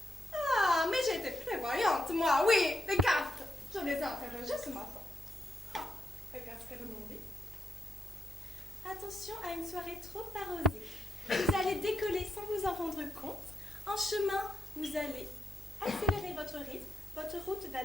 Ah, mais j'ai été prévoyante, moi, oui, les cartes. Je les ai interrogées ce matin. Ah, regarde ce qu'elles m'ont dit. Attention à une soirée trop arrosée. Vous allez décoller sans vous en rendre compte. En chemin, vous allez accélérer votre rythme, votre route va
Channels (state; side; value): normal; both; correlation 0.84